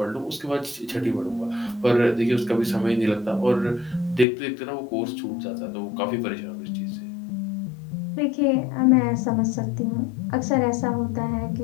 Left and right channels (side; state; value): right; drops out; at 4.2 s